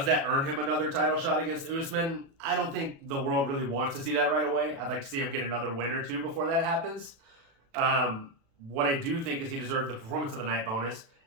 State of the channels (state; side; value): late; left; 36 ms